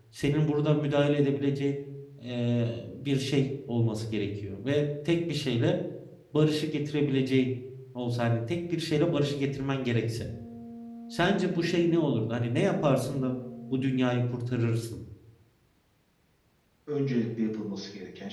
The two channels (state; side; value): identical; both; correlation 1.00